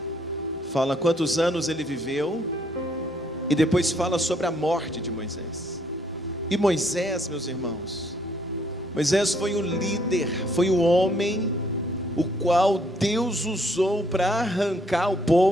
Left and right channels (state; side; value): normal; both; correlation 0.67